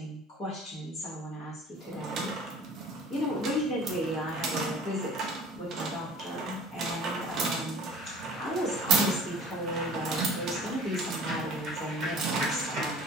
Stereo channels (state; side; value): normal; both; correlation 0.46